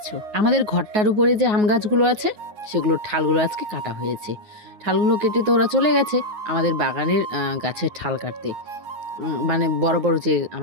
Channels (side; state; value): left; late; 9.5 ms